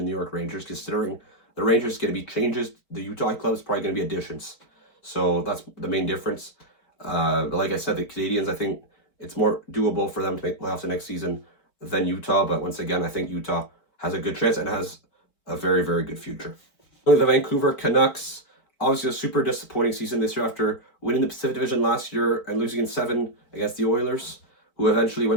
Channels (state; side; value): late; right; 4.4 ms